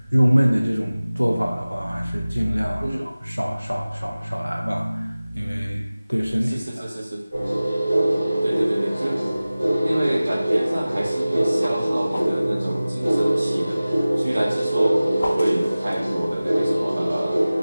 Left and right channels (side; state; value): both; inverted; correlation -0.97